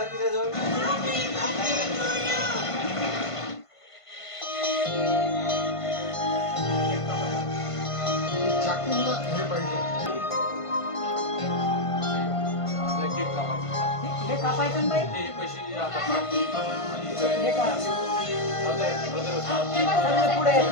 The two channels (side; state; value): right; late; 1.5 ms